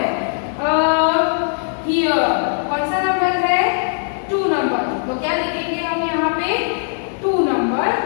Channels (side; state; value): right; silent; 56 dB below the other